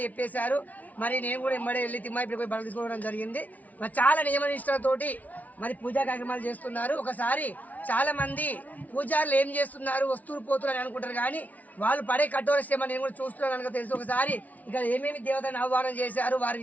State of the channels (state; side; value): late; right; 0.073 ms